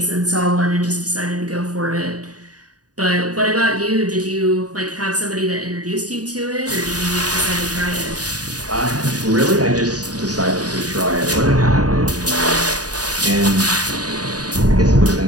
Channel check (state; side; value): late; left; 0.68 ms